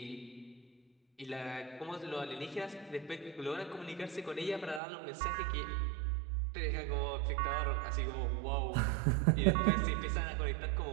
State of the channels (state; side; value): drops out; left; at 4.8 s